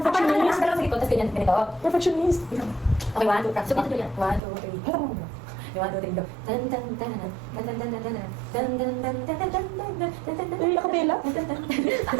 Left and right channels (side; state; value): left; drops out; at 4.4 s